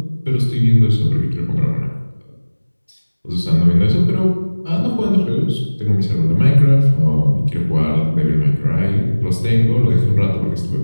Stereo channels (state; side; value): inverted; both; correlation -1.00